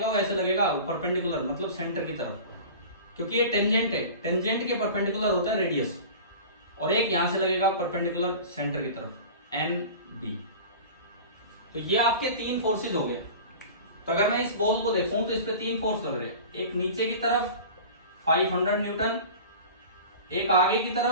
वो ऐसे लगेगा परपेंडिकुलर, मतलब सेंटर की तरफ, क्योंकि ये टेंजेंट है, टेंजेंट के परपेंडिकुलर होता है रेडियस। और एक यहां से लगेगा परपेंडिकुलर सेंटर की तरफ एन बी। तो ये आपके 3 फोर्सेज हो गए। तो अगर मैं इस बॉल को देखूं तो इस पे 3 फोर्स लग रहे हैं, एक नीचे की तरफ 500 न्यूटन, एक आगे की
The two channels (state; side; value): inverted; both; correlation -0.37